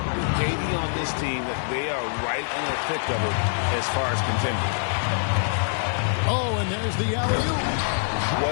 KD on this team, they are right in the thick of it as far as contending. Oh, and there's the alley-oop.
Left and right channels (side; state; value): right; silent; 62 dB below the other